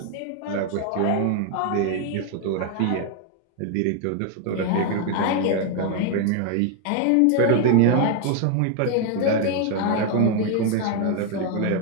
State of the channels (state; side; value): different; both; correlation 0.00